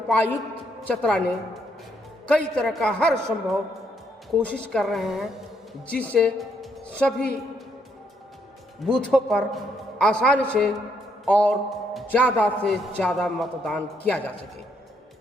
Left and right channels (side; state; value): both; normal; correlation 0.73